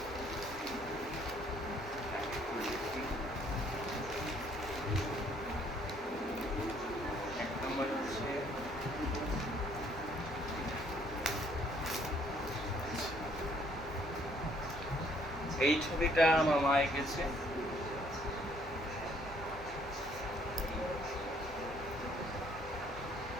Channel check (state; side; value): normal; both; correlation 0.64